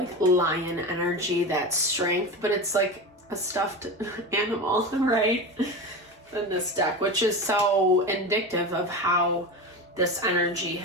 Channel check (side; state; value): both; normal; correlation 0.25